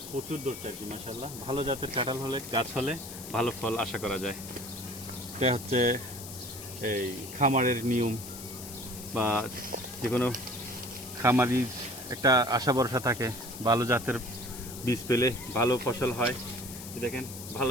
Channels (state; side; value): noise; left; hiss, 12 dB below the sound